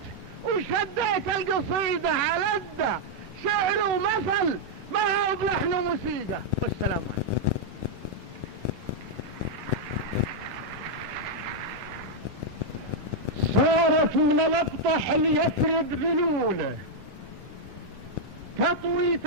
وشديت القصيدة على الدى، شعر ومثل ما هو بلحن وموسيقى. والسلام عليكم. صارت من الابطح ليفرض ذلوله، تطوي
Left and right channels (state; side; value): late; left; 11 ms